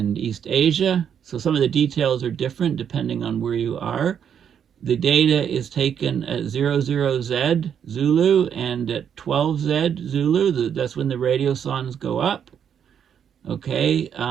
East Asia. So some of the details are different depending on where you are. The data is taken at 00Z Zulu and at 12Z Zulu. That's when the radiosondes go up. Okay,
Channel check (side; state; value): left; quieter; 8.3 dB